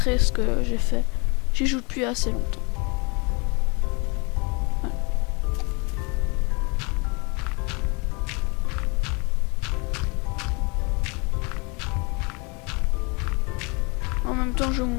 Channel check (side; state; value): right; quieter; 30.9 dB